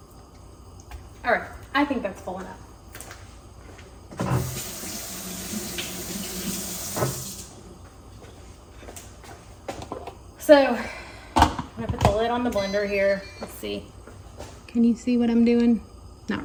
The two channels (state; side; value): identical; both; correlation 1.00